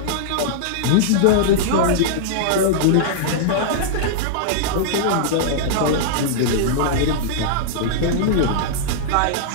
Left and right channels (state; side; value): different; both; correlation -0.02